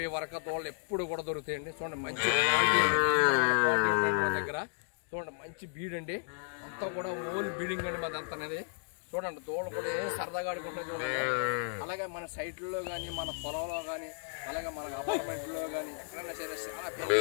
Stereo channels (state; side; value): silent; right; digital silence